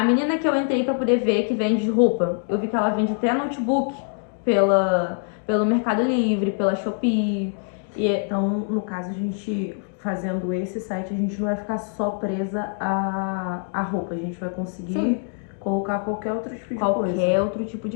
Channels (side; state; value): right; silent; 57 dB below the other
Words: menina que eu entrei para poder ver que vende roupa, eu vi que ela vende até notebook pelo Mercado Livre, pela Shopee. Então, no caso, a gente fazendo esse site, a gente não vai ficar só presa à roupa, a gente vai conseguir colocar qualquer outro tipo de coisa. Qualquer outro tipo